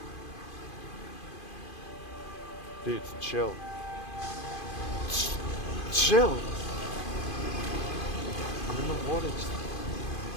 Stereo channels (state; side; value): late; right; 2.5 ms